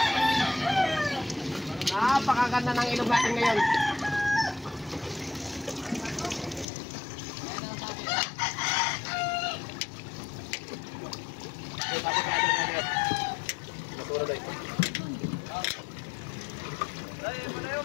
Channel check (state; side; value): drops out; right; at 6.7 s